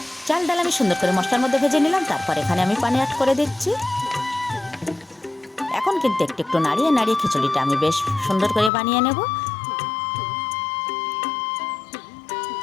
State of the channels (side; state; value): right; drops out; at 8.7 s